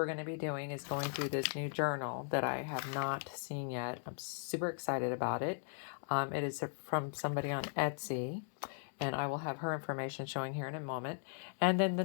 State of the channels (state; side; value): silent; right; digital silence